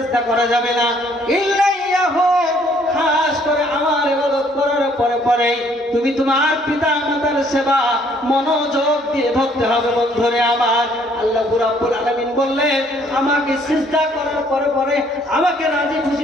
করা যাবে না, ইল্লা ইয়াহু। খাস করে আমার ইবাদত করার পরে তুমি তোমার পিতা মাতার সেবা মনোযোগ দিয়ে ধরতে হবে। বন্ধুরে আমার আল্লাহ রাব্বুল আলামিন বললেন, আমাকে সিজদা করার পরে, আমাকে রাজি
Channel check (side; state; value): both; normal; correlation 0.63